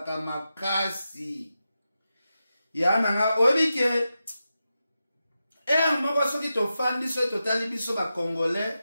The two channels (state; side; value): inverted; both; correlation -0.90